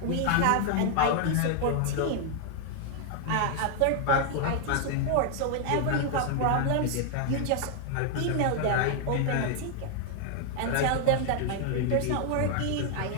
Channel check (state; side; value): different; both; correlation 0.00